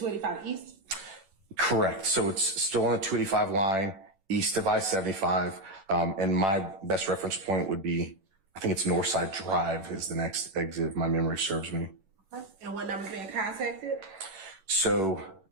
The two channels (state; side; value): late; left; 10 ms